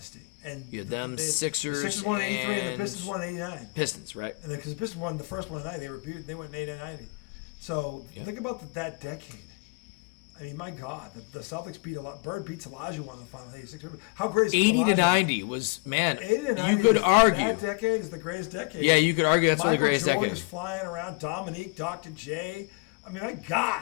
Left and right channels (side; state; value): right; quieter; 32.2 dB